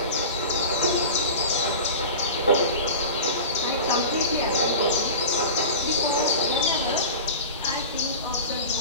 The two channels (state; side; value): inverted; both; correlation -0.32